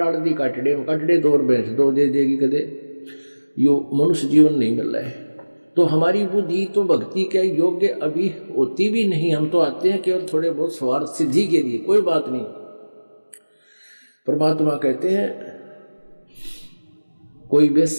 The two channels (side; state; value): both; inverted; correlation -1.00